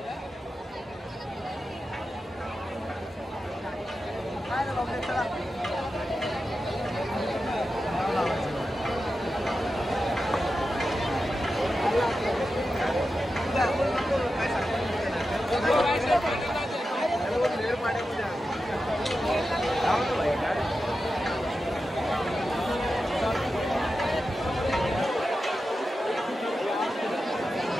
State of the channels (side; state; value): both; normal; correlation 0.91